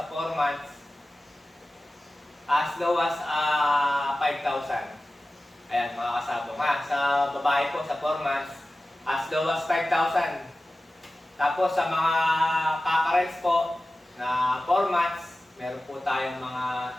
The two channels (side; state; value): both; normal; correlation 0.95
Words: 4 months, as low as 5,000. Ayan mga kasabong ha. Sa babae po sa 4 months, as low as 5,000. Tapos sa mga kakarels po na 4 months, meron po tayong mga